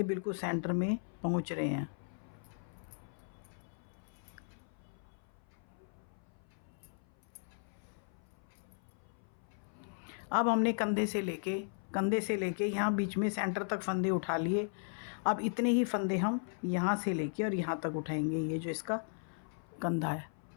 बिल्कुल सेंटर में पहुंच रहे हैं। अब हमने कंधे से लेके यहाँ बीच में सेंटर तक फंदे उठा लिए। अब इतने ही फंदे हम यहाँ से लेके और यहाँ तक उठाएंगे, ये जो इसका कंधा है,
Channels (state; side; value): silent; right; 53 dB below the other